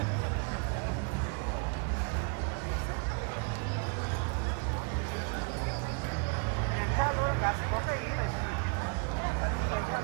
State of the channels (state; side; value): quieter; left; 35.4 dB